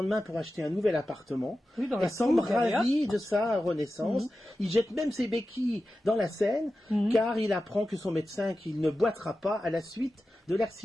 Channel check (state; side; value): normal; both; correlation 0.93